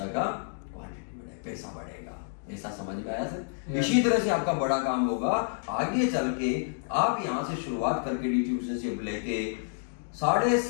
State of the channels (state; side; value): silent; right; digital silence